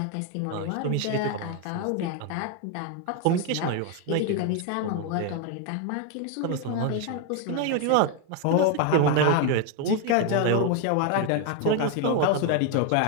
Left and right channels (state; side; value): different; both; correlation 0.01